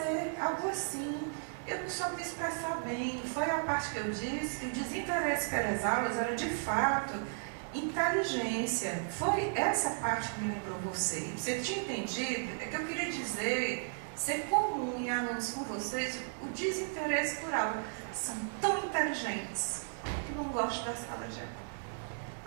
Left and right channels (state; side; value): silent; left; digital silence